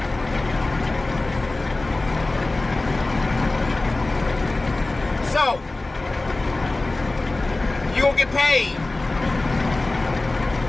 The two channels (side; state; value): right; quieter; 3.0 dB